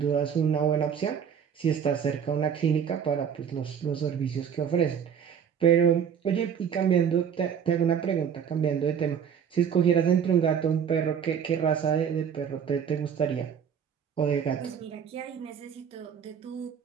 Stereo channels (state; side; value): quieter; left; 7.8 dB